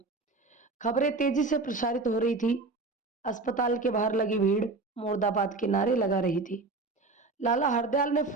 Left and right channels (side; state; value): left; quieter; 3.6 dB